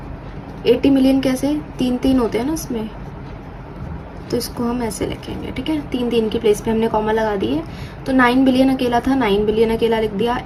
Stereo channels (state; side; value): identical; both; correlation 1.00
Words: 80 मिलियन कैसे, 3 होते हैं ना इसमें, तो इसको हम ऐसे लिखेंगे। ठीक है, 3 की प्लेस पे हमने कॉमा लगा दिए। तो 9 बिलियन अकेला था, 9 बिलियन अकेला लिख दिया।